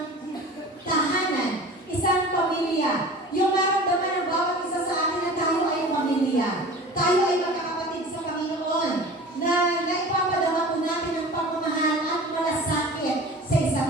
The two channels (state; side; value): normal; both; correlation 0.39